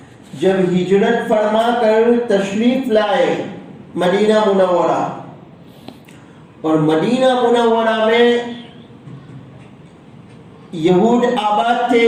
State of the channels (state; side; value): identical; both; correlation 1.00